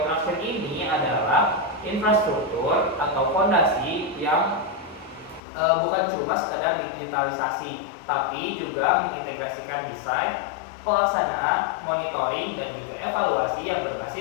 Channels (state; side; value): drops out; right; at 5.4 s